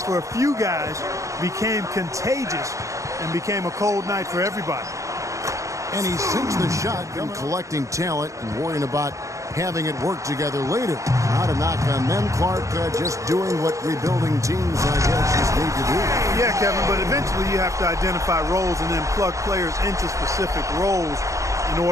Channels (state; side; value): late; left; 0.15 ms